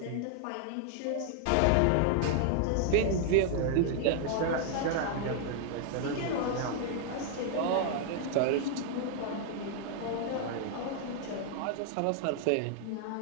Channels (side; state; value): both; different; correlation 0.00